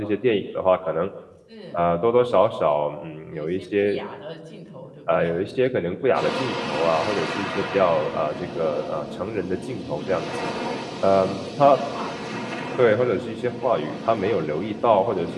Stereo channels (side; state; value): both; identical; correlation 1.00